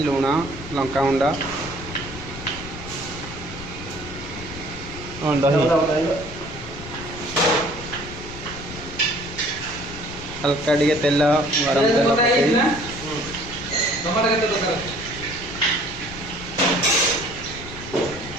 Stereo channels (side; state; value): left; noise; rumble, 12 dB below the sound